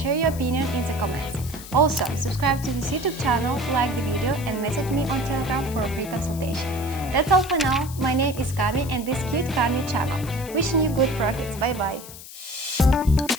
your opinion in the comments. Also, subscribe to this YouTube channel, like the video and message me on Telegram for a free consultation. That's all for now. My name is Cami and this Cute Cami channel. Wishing you good profits. Bye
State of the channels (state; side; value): noise; left; hiss, 15 dB below the sound